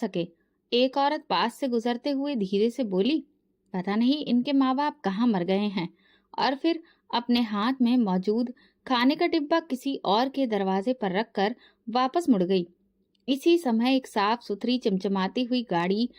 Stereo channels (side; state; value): both; identical; correlation 1.00